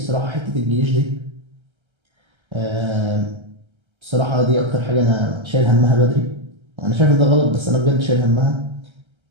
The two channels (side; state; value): left; late; 1.3 ms